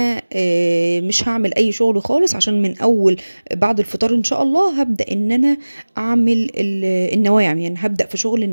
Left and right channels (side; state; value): both; inverted; correlation -1.00